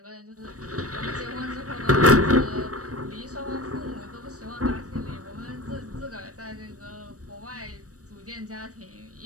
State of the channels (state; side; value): late; left; 0.66 ms